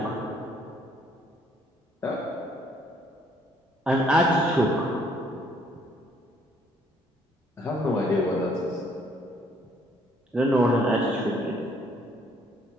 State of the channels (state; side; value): normal; both; correlation 0.65